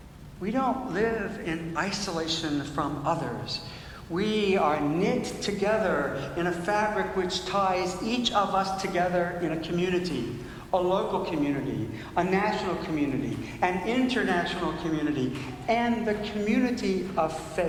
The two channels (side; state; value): both; identical; correlation 1.00